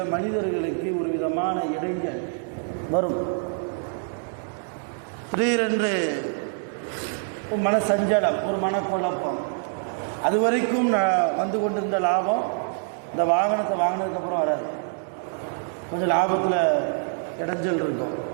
மனிதர்களுக்கு ஒரு விதமான இடைஞ்சல் வரும். திடீரென்று ஒரு மனசஞ்சலம், ஒரு மனக்குழப்பம். அது வரைக்கும் வந்து கொண்டிருந்த லாபம் இந்த வாகனத்தை வாங்கினதுக்கப்புறம் வராது. கொஞ்சம் லாபத்தில் இடைஞ்சல் இருக்கும்,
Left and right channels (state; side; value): silent; left; 61 dB below the other